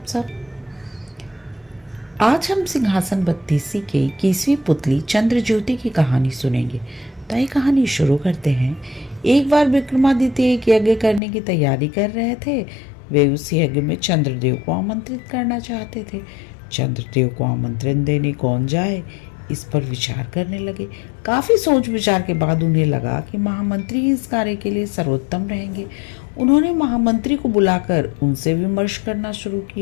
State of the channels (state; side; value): drops out; right; at 11.2 s